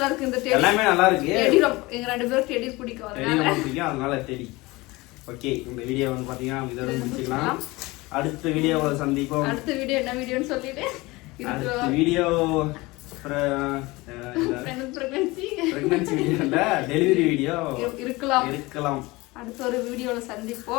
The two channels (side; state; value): right; quieter; 22.1 dB